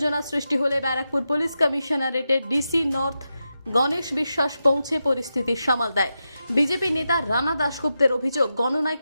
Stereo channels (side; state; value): both; inverted; correlation -0.89